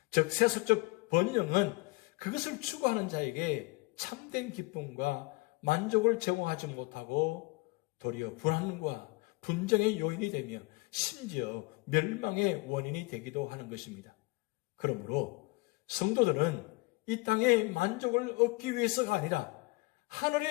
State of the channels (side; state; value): right; quieter; 25.2 dB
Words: 즉 세속적 번영은 그것을 추구하는 자에게 참된 기쁨과 만족을 제공하지 못하고 도리어 불안과 분쟁의 요인이 되며 심지어 멸망의 원인이 되기도 하는 것입니다. 그러므로 성도들은 이 땅의 만족을 얻기 위해서가 아니라